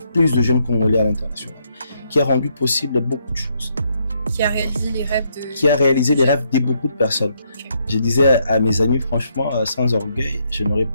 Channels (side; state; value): both; inverted; correlation -0.75